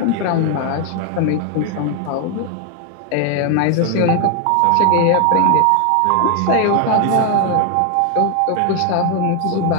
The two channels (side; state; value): both; different; correlation 0.01